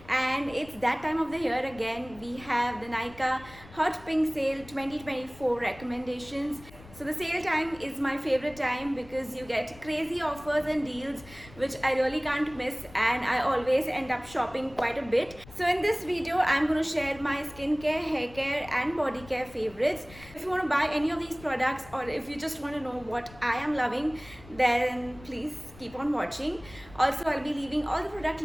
and it's that time of the year again. We have the Nykaa Hot Pink Sale 2024 recommendations. So the sale time is my favorite time because you get crazy offers and deals which I really can't miss, and I always end up shopping quite a bit. So in this video, I'm going to share my skincare, hair care and body care favorites. If you want to buy any of these products or if you just want to know what I am loving, then please keep on watching. Also, I'll be leaving all the product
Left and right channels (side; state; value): left; noise; rumble, 20 dB below the sound